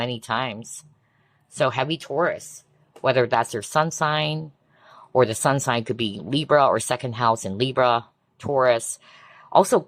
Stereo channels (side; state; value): both; identical; correlation 1.00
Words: times. So heavy Taurus, whether that's your sun sign, or the sun sign could be Libra or second house in Libra, Taurus. Also